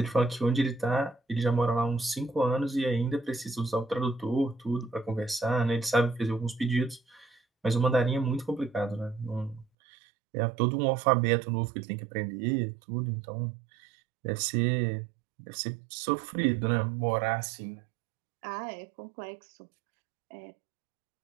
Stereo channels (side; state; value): left; drops out; at 9.7 s